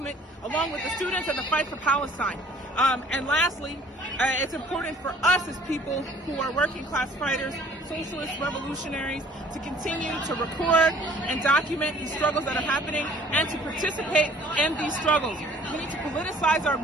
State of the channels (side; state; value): both; normal; correlation 0.54